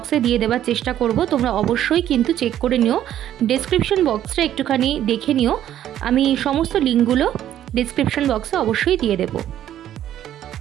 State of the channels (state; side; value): quieter; left; 11.5 dB